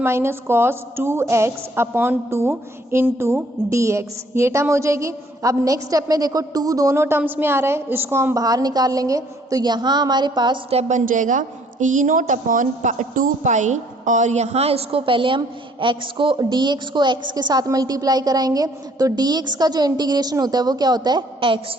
minus cos 2x upon 2 into dx, ये टर्म हो जाएगी। अब नेक्स्ट स्टेप में देखो 2 दोनों टर्म्स में आ रहा है, इसको हम बाहर निकाल लेंगे, तो यहाँ हमारे पास स्टेप बन जाएगा ई नोट अपॉन 2 पाई, और यहाँ इसको पहले हम x को dx को x के साथ मल्टीप्लाई कराएंगे, तो dx का जो इंटीग्रेशन होता है वो क्या होता है x,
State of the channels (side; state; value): both; normal; correlation 0.61